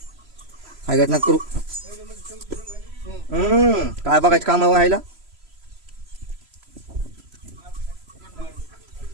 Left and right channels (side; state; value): left; late; 3.0 ms